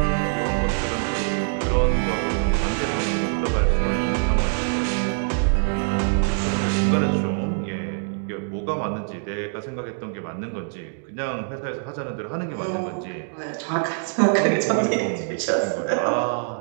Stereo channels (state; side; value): silent; left; digital silence